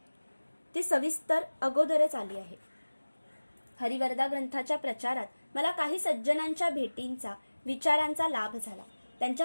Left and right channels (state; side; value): inverted; both; correlation -1.00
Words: ती सविस्तर अगोदरच आली आहे. हरिवरदा ग्रंथाच्या प्रचारात मला काही सज्जनांच्या भेटींचा विचारांचा लाभ झाला.